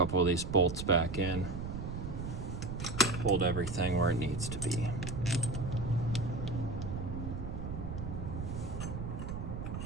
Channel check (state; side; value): noise; right; rumble, 5 dB below the sound